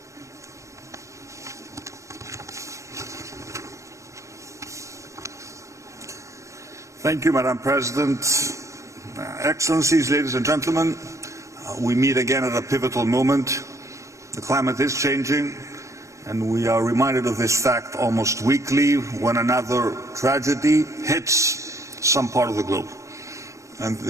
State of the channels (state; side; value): late; left; 0.15 ms